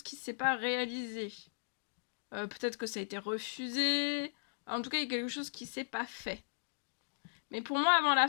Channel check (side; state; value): right; silent; digital silence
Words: qui ne s'est pas réalisé. Peut-être que ça a été refusé. En tout cas, il y a quelque chose qui ne s'est pas fait. Mais pour moi, avant la